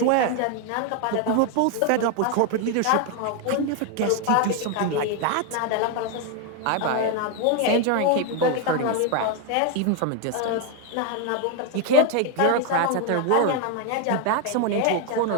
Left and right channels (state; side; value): different; both; correlation 0.01